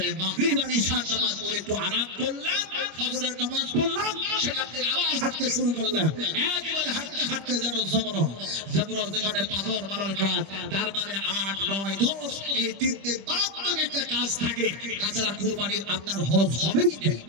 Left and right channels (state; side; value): late; left; 25 ms